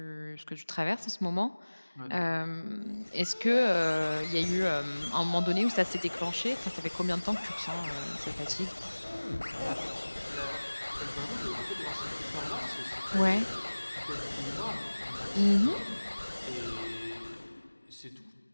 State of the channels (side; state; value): both; inverted; correlation -1.00